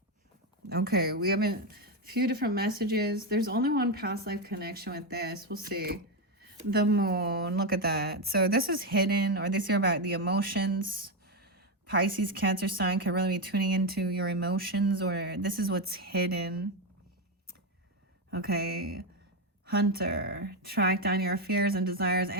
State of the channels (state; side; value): normal; both; correlation 0.09